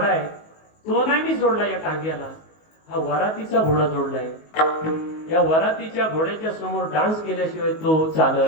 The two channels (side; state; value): right; late; 19 ms